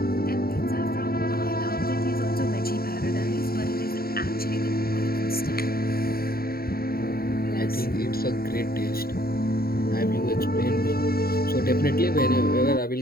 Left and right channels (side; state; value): right; late; 0.44 ms